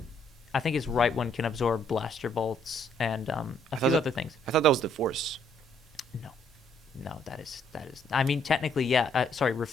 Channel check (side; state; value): both; normal; correlation 0.68